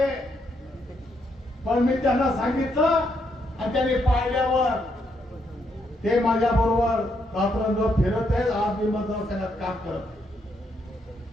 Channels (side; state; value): both; normal; correlation 0.77